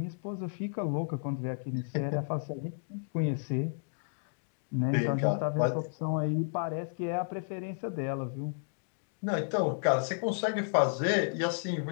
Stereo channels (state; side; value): silent; right; digital silence